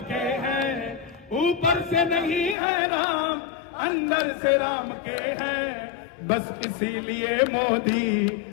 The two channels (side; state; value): right; drops out; at 2.6 s